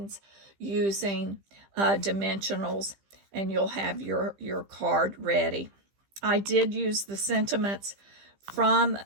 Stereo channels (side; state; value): left; late; 15 ms